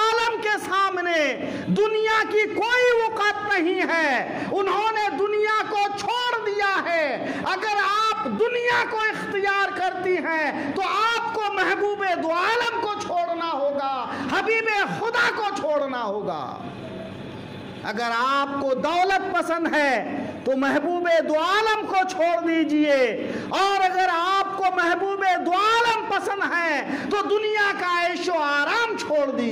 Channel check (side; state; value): both; identical; correlation 1.00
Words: کے سامنے دنیا کی کوئی وقت نہیں ہے، انہوں نے دنیا کو چھوڑ دیا ہے۔ اگر آپ دنیا کو اختیار کرتی ہیں تو آپ کو محبوب دو عالم کو چھوڑنا ہوگا، حبیب خدا کو چھوڑنا ہوگا۔ اگر آپ کو دولت پسند ہے تو محبوب دو عالم کو چھوڑ دیجئے، اور اگر آپ کو محبوب دو عالم پسند ہے تو دنیا کا عیش و آرام چھوڑ